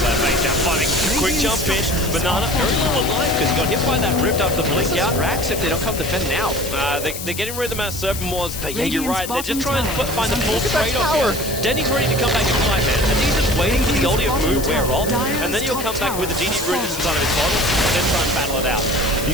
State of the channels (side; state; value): left; noise; hiss, 8 dB below the sound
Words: base down, fighting. Quick jump in. Banana very little alive because he got hit by that ripped up the Blink out. Racks if they don't come defend now. They're getting rid of the Mass Serpent Wards, but yeah, you're right. They're just trying to find the full trade-off here. Denny's ready to come back and fight, man. I think he's just waiting for the Ultimate move wear off, and then he'll come back with the DD Root inside of his bottle, and then try and battle it out.